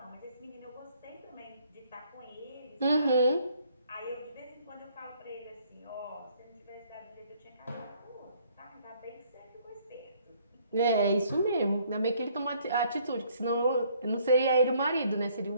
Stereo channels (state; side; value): inverted; both; correlation -0.63